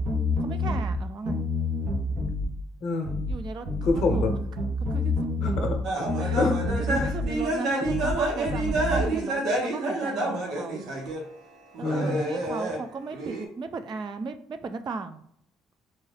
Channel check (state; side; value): normal; both; correlation 0.66